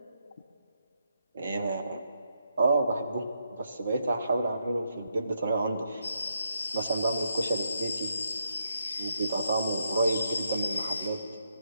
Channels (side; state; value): both; inverted; correlation -0.80